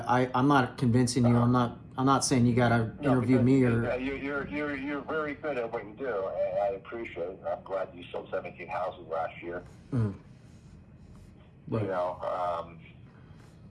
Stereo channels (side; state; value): both; identical; correlation 1.00